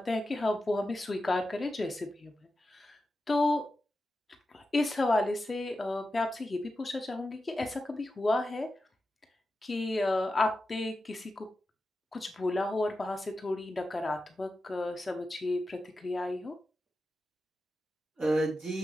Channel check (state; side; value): normal; both; correlation 0.91